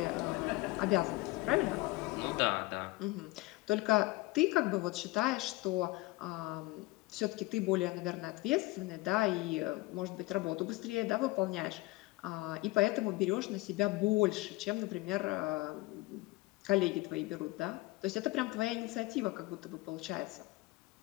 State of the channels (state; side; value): quieter; right; 21.3 dB